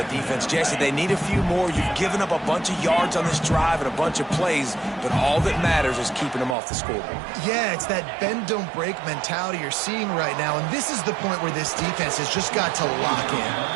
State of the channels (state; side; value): drops out; left; at 6.6 s